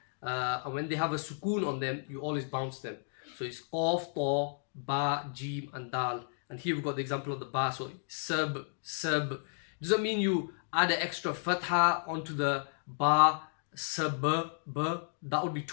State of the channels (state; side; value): silent; right; digital silence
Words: And when they have a sukoon on them, you always bounce them. So it's qaf, ta, ba, jim, and dal. And here we've got the example of the ba. So sab. Doesn't mean you add an extra fatha onto the ba, sab, ba. That would be